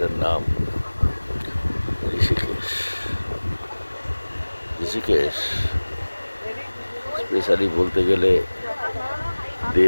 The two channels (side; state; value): both; inverted; correlation -1.00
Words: নাম ঋষিকেশ। ঋষিকেশ স্পেশালি বলতে গেলে